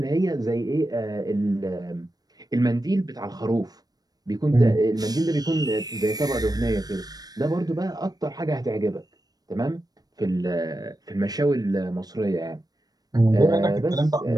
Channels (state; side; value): late; left; 0.19 ms